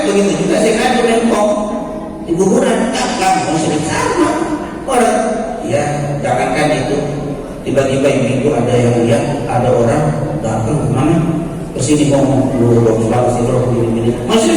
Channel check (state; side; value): identical; both; correlation 1.00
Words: begitu juga saya ngadu nempong di kuburan, enggak musyrik sama orang. Ya jangankan itu, tiba-tiba ibu ada yang lihat ada orang datang kemana kesini ngomong lu dong selalu begini masih